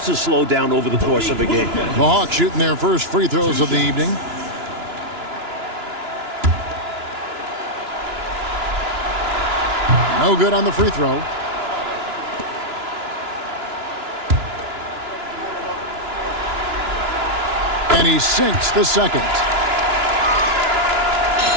to slow down over the course of a game. The Hawks shooting their first free throws of the evening. No good on the free throw. And he sinks the second.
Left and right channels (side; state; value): left; late; 2.9 ms